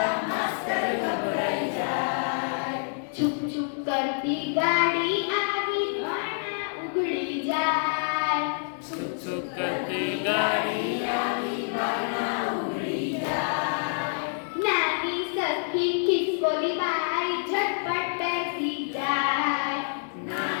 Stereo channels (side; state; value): right; silent; digital silence